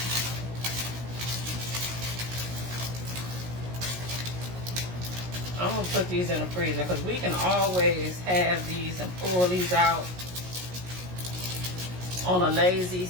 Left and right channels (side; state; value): left; late; 17 ms